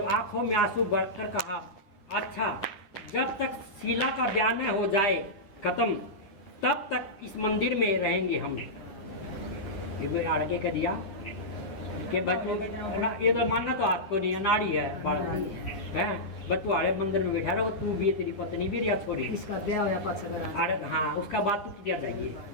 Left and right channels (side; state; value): right; late; 10 ms